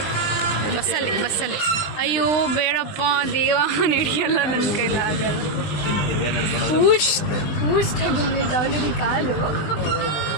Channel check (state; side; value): late; right; 20 ms